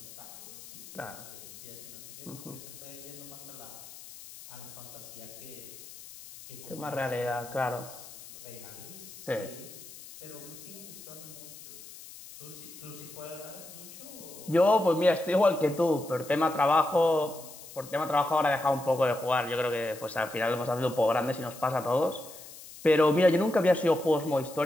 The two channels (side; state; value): left; noise; hiss, 16 dB below the sound